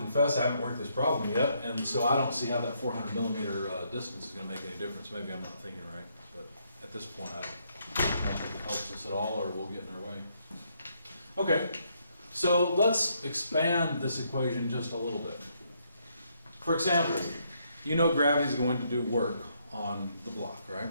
I haven't worked this problem yet, and so I don't see how that 400 millimeter distance is going to make any difference. Maybe I'm not thinking right, but at this point I don't think it helps us at all, or we'll get in our way. Okay, so let's expand this equation just a little bit. For example, you know gravity is going to do work on the block,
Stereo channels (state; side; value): inverted; both; correlation -0.74